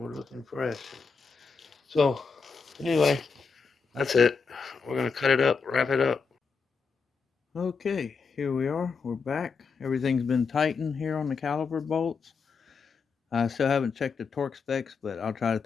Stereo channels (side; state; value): right; quieter; 5.2 dB